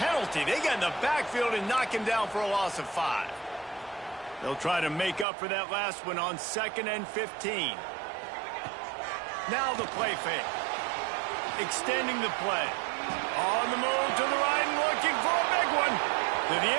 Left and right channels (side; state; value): left; drops out; at 5.2 s